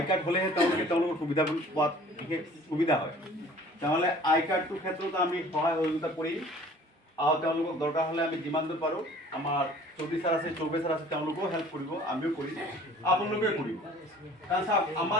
কাৰ্ড হ'লেহে তেওঁলোকৰ সুবিধা পোৱাত বিশেষ সুবিধা হয়। তেনেহ'লে আই কাৰ্ডটোৰ ক্ষেত্ৰত আমি সহায় সহযোগিতা কৰিম আৰু তেওঁলোকক দৰকাৰ হ'লে আমি যিমান দূৰ পাৰোঁ, আমাৰ চৌধুৰী ছাৰ আছে, চৌবে ছাৰ আছে, তেওঁলোকেও হেল্প কৰিব, আমিও কৰিম, আপোনালোকে কৰিব। কাৰণ চাওক,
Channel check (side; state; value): both; normal; correlation 0.49